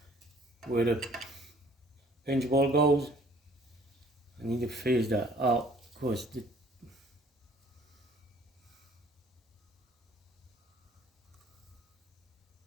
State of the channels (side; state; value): both; normal; correlation 0.55